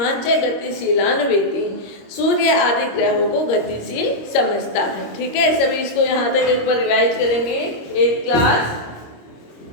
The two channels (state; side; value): late; right; 25 ms